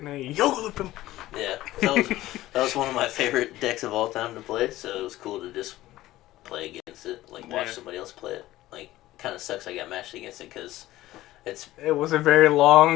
they yoga him. Yeah, that was one of my favorite decks of all time to play, so it was cool to just play against it, like watch somebody else play it. Like, kind of sucks I got matched against it because it was a very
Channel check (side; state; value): right; quieter; 16.0 dB